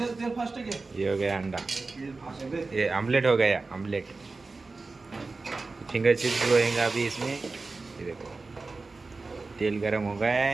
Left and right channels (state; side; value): quieter; left; 3.8 dB